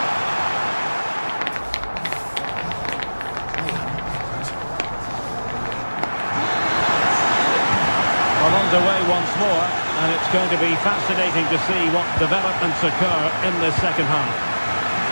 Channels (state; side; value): inverted; both; correlation -1.00